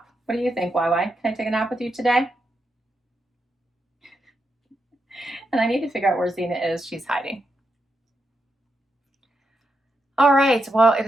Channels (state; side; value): normal; both; correlation 0.84